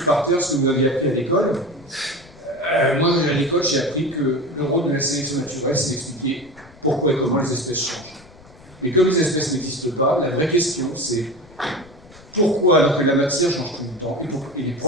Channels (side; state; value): left; noise; rumble, 24 dB below the sound